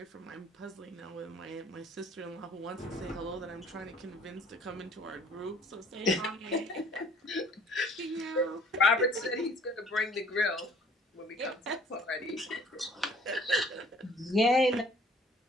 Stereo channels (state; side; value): normal; both; correlation 0.54